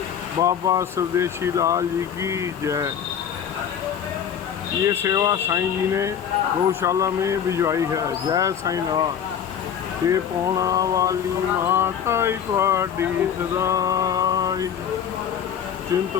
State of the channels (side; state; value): right; quieter; 8.5 dB